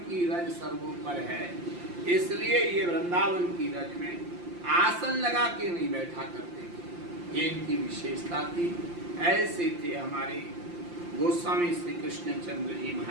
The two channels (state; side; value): late; left; 5.7 ms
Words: रज सर्वोपर है, इसलिए ये वृंदावन की रज में आसन लगा के नहीं बैठा करते थे। ये इनकी विशेषता थी। ऐसे थे हमारे गोस्वामी श्री कृष्णचंद्र जी